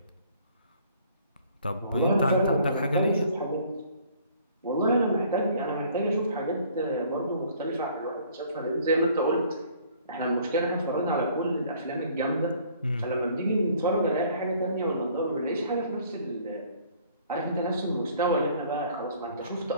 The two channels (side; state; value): both; inverted; correlation -0.57